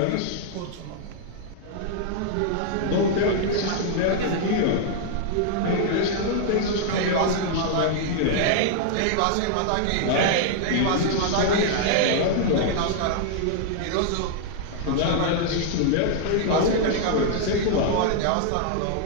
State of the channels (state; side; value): different; both; correlation -0.01